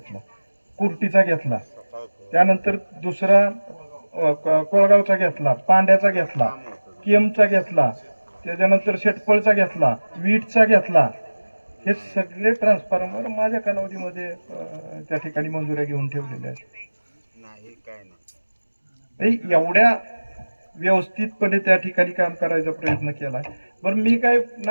कुर्टीचा घेतला, त्यानंतर दुसरा कोळगावचा घेतला, पांड्याचा घेतला, केमचा घेतला, त्याच्यानंतर शेटपळचा घेतला, वीटचा घेतला. हे सगळे ट्रान्सफॉर्मर माझ्या कालावधीमध्ये त्या ठिकाणी मंजुऱ्या घेऊन ठेवलेल्या आहेत. एवढ्या व्यवस्थितपणे त्या ठिकाणी काम करायचा प्रयत्न केला. बरं, मी काय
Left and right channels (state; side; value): inverted; both; correlation -1.00